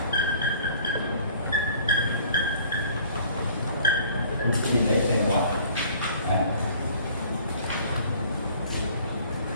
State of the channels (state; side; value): inverted; both; correlation -0.53